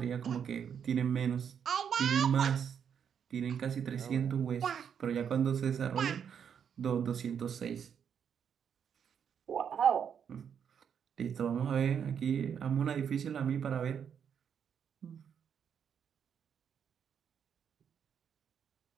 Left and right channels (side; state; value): left; quieter; 7.8 dB